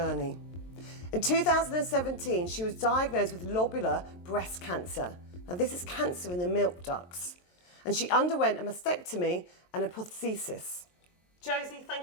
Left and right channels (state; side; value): late; right; 23 ms